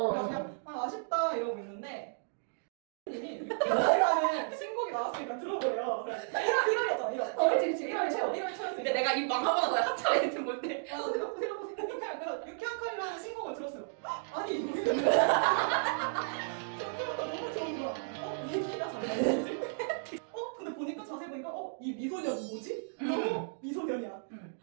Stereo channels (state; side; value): silent; left; digital silence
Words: 그래서 그냥 아쉽다 이러고 있는데 님이 늑자라는 신곡이 나왔으니까 들어보래요. 1월이었잖아 1월. 그치. 1월 초였으니까. 근데 내가 이 망하고 나서 한참 애들 볼 때. 그래서 유쾌한 칼이라는 신곡을 들었어요. 아니 이거 처음부터 너무 좋은 거야. 이 키가 잘 나오지? 근데 보니까 자세히 보니까 이 미소년 뭐지? 너무 미소년이야.